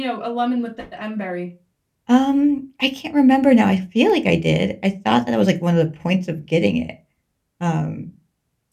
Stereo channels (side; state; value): both; identical; correlation 1.00